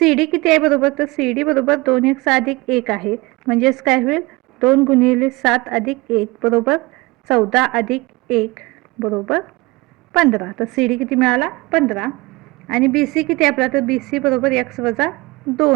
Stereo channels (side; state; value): left; quieter; 22.9 dB